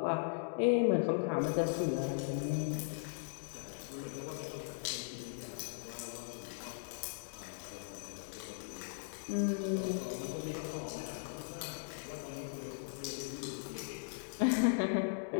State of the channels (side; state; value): right; silent; digital silence